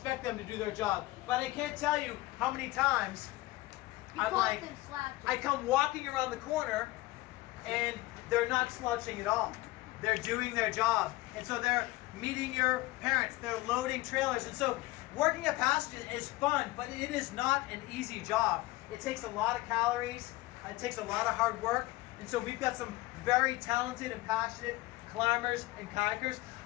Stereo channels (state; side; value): quieter; right; 19.4 dB